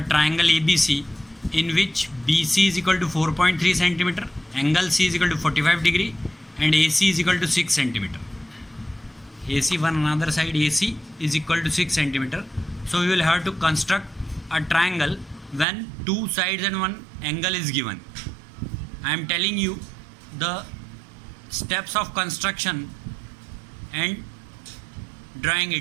triangle ABC in which BC is equal to 4.3 centimeter, angle C is equal to 45 degree and AC is equal to 6 centimeter. AC one another side AC is equal to 6 centimeter. So we will have to construct a triangle when two sides and one angle is given. I am telling you the steps of construction and drawing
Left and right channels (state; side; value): drops out; left; at 15.7 s